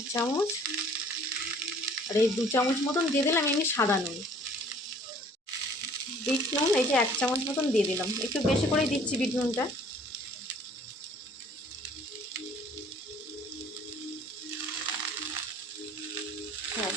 চামচ, আর এই 2 চামচ মতন দিয়ে দিলাম এমনি সাদা নুন। বিট নুন এই যে 1 চামচ মতন দিয়ে দিলাম, একটু বেশি করেই দিচ্ছি বিট নুনটা। হ্যাঁ,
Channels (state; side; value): normal; both; correlation 0.54